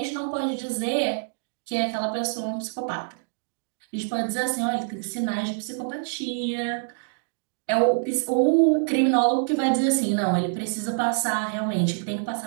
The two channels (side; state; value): left; silent; digital silence